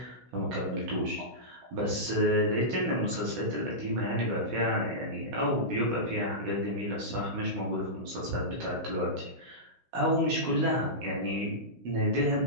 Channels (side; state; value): left; late; 16 ms